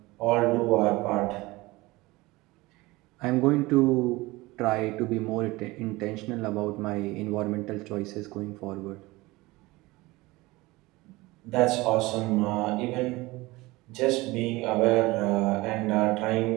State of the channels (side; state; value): left; quieter; 21.1 dB